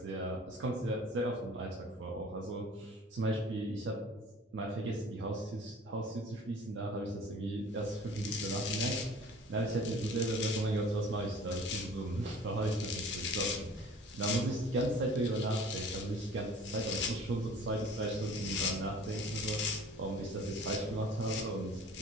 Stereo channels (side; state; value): both; normal; correlation 0.47